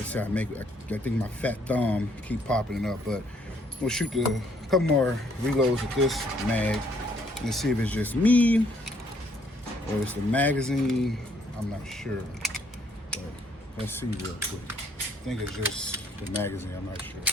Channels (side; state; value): both; normal; correlation 0.67